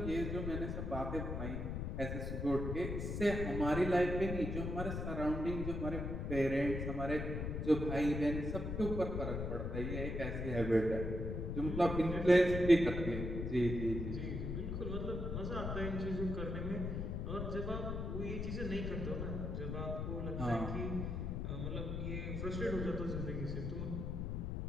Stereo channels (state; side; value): noise; left; rumble, 3 dB below the sound